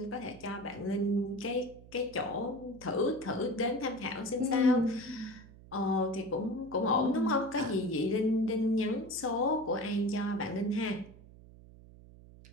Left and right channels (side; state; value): right; noise; hum, 20 dB below the sound